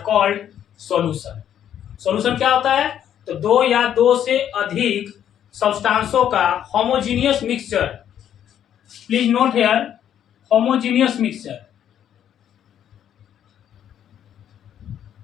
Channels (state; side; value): quieter; right; 10.0 dB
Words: called solution. Solution क्या होता है? तो दो या दो से अधिक सब्सटेंसों का homogeneous mixture. Please note here, homogeneous mixture.